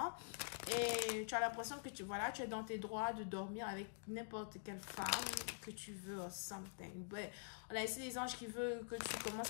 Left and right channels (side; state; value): right; silent; digital silence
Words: Et tu as l'impression que tu es dans tes droits de dormir avec n'importe quelle femme que tu veux or something. But, on a ici des anges qui veulent que tu